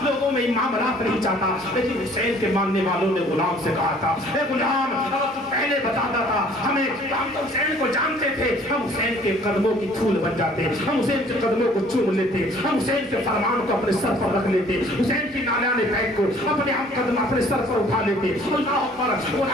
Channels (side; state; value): both; normal; correlation 0.56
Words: لوگوں میں معاملات نہیں چاہتا۔ لیکن حسین کے ماننے والوں نے غلام سے کہا تھا اے غلام اگر تو پہلے بتاتا تھا ہمیں، ہم تو حسین کو جانتے تھے، ہم حسین کے قدموں کی دھول بن جاتے، ہم حسین کے قدموں کو چوم لیتے، ہم حسین کے فرمان کو اپنے سر پر رکھ لیتے، حسین کی نالیاں بیگ کو اپنے ہم قدم اپنے سر پر اٹھا لیتے۔ اللہ اکبر۔